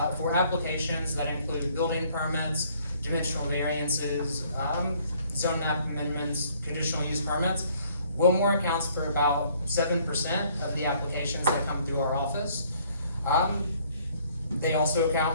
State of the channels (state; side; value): inverted; both; correlation -0.61